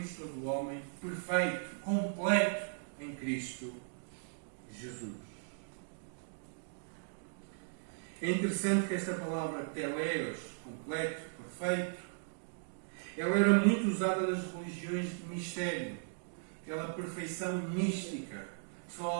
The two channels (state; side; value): silent; left; digital silence